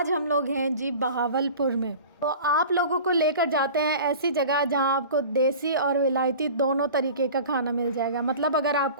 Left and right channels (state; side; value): inverted; both; correlation -0.39